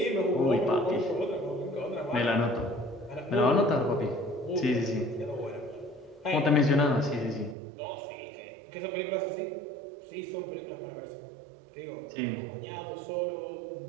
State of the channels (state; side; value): drops out; left; at 7.6 s